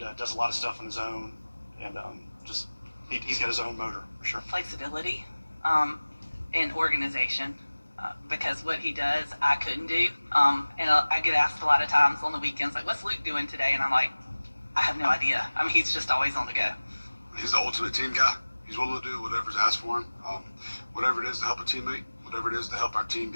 does a lot of stuff on his own, and he's got his own motor for sure. Flexibility and organization, because what he does I couldn't do, and I get asked a lot of times on the weekends, like, what's Luke doing today? And I'm like, I have no idea. I mean, he's just always on the go. He's the ultimate team guy. He's willing to do whatever's asked for him. Whatever it is to help a teammate, whatever it is to help our team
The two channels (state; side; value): inverted; both; correlation -1.00